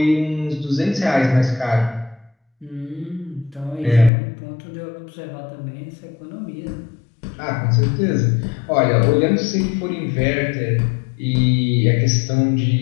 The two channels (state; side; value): drops out; right; at 4.1 s